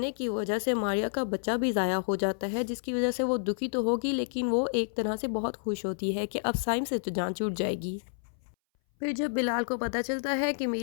की वजह से मारिया का बच्चा भी ज़ाया हो जाता है, जिसकी वजह से वो दुखी तो होगी लेकिन वो एक तरह से बहुत खुश होती है कि अब साइम से तो जान छूट जाएगी। फिर जब बिलाल को पता चलता है कि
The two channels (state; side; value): silent; right; 58 dB below the other